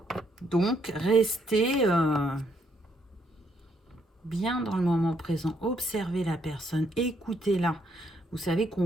Donc restez bien dans le moment présent, observez la personne, écoutez-la. Vous savez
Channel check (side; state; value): both; normal; correlation 0.72